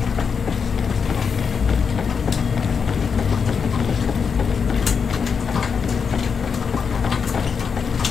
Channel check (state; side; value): quieter; right; 6.1 dB